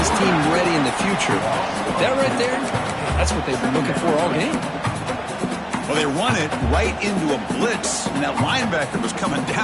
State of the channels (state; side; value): identical; both; correlation 1.00